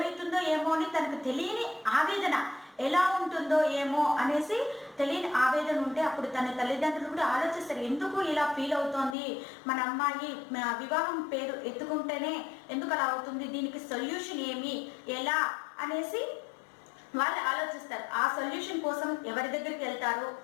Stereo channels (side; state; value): right; drops out; at 9.2 s